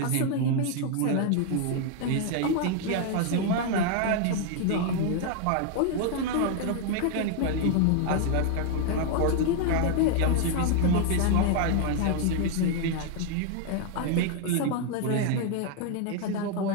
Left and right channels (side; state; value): both; different; correlation 0.00